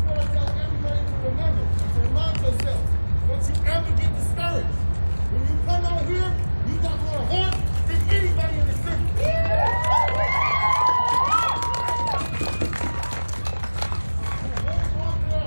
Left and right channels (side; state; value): both; inverted; correlation -1.00